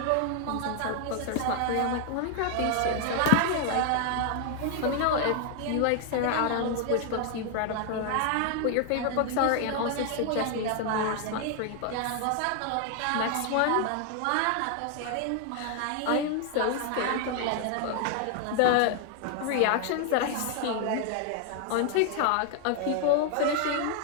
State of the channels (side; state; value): both; different; correlation 0.00